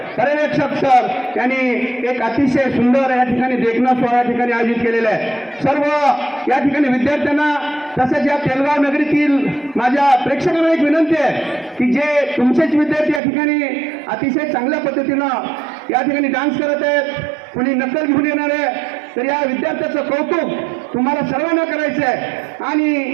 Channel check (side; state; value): left; drops out; at 13.2 s